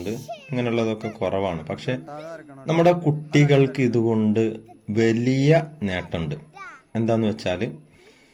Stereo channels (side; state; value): both; identical; correlation 1.00